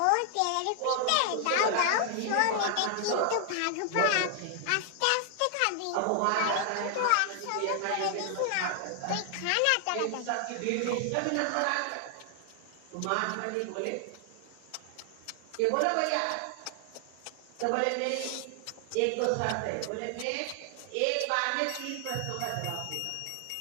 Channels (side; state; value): both; different; correlation 0.00